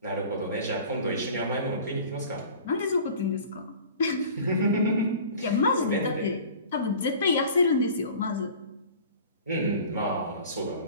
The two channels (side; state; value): both; inverted; correlation -0.43